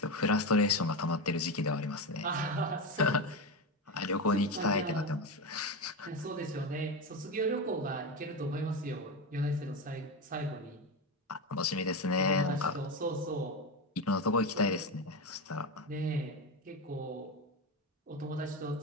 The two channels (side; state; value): both; normal; correlation 0.16